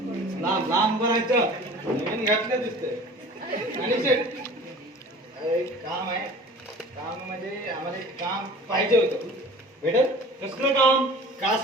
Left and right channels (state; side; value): normal; both; correlation 0.43